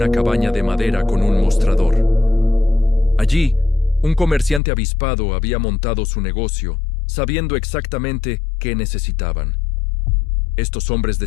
cabaña de madera con un mostrador. Allí, un comerciante avispado había montado su negocio, sabiendo exactamente qué necesitaban. Estos hombres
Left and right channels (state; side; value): drops out; right; at 4.6 s